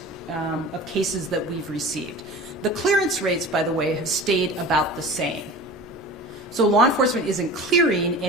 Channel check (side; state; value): both; normal; correlation 0.36